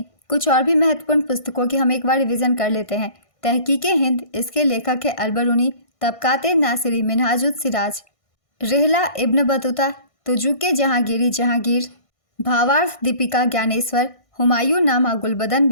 कुछ और भी महत्वपूर्ण पुस्तकों की हम एक बार रिवीजन कर लेते हैं। तहकीक-ए-हिंद, इसके लेखक है अल-बरूनी। तबक़ात-ए-नासिरी, मिनहाजुस-सिराज। रिहला Ibn Battuta, तुजुक-ए Jahangiri, Jahangir. भावार्थ दीपिका ज्ञानेश्वर, हुमायूं नामा गुलबदन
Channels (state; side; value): late; right; 1.5 ms